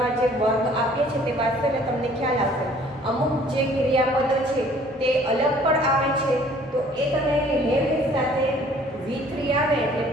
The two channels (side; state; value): both; normal; correlation 0.56